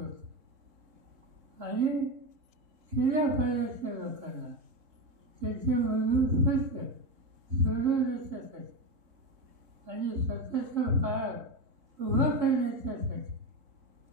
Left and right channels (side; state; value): left; late; 3.7 ms